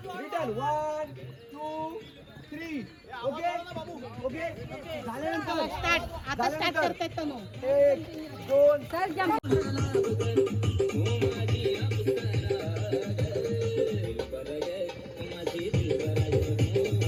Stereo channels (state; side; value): identical; both; correlation 1.00